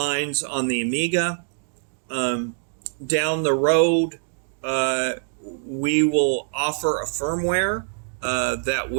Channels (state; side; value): silent; left; digital silence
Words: on the Amiga. Down the road, we will offer a firmware that